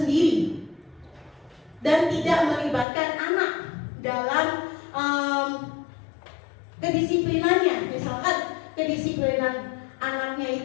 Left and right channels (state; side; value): drops out; right; at 2.9 s